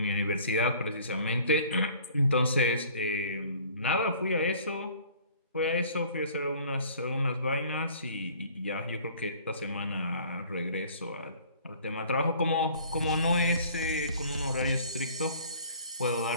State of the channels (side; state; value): both; inverted; correlation -0.52